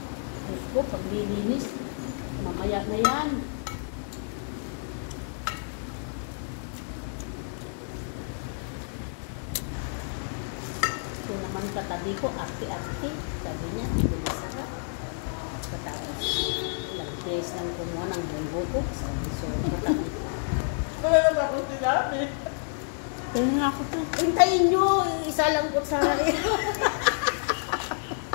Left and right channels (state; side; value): silent; right; digital silence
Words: Diyos ko, paglilinis, mamaya na yan. Ito naman katabi ko, ate-ate, sabi niya, hindi masarap. Katapos, ilang days lang kumuha ng buko ko, sabi so, katabi ko. Wala naman ako sinabi. Kaya nga ako to. Hintayin nyo, isa lang ko sa